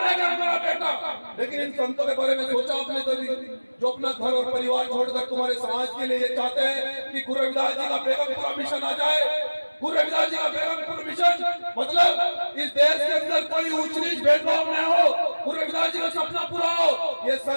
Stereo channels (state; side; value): inverted; both; correlation -1.00